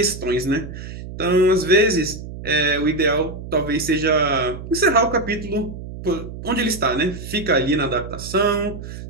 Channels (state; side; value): noise; right; hum, 11 dB below the sound